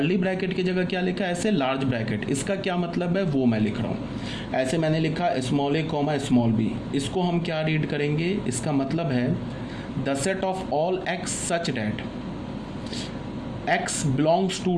ब्रैकेट की जगह क्या लिखा है, ऐसे लार्ज ब्रैकेट। इसका क्या मतलब है वो मैं लिख रहा हूँ। ऐसे मैंने लिखा small a comma small b, इसको हम क्या रीड करेंगे, इसका मतलब है the set of all x such that x belongs to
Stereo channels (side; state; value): both; identical; correlation 1.00